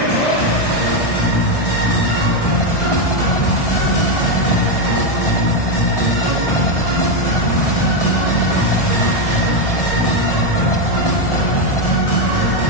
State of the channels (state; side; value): late; right; 1.6 ms